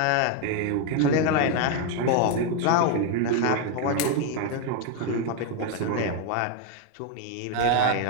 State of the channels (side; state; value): both; different; correlation 0.01